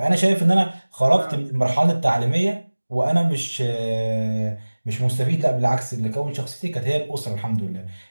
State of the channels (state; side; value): inverted; both; correlation -1.00